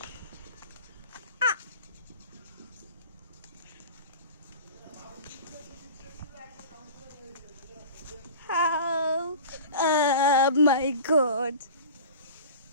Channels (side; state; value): both; inverted; correlation -0.37